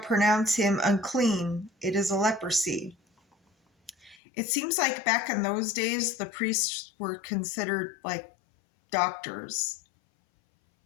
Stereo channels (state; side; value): drops out; right; at 4.2 s